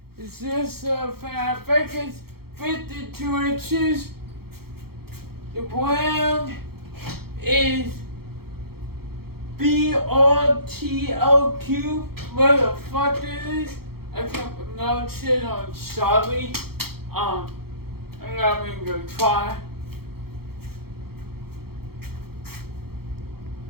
is this fan. I think it's 52 inches. The brand is BRTLQ. What the fuck it is? I can't pronounce it. I'm sorry. I'm not even gonna try.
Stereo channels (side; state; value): left; late; 0.95 ms